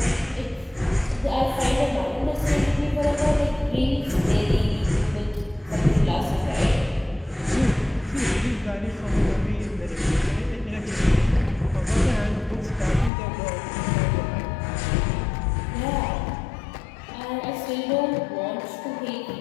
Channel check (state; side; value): drops out; right; at 13.1 s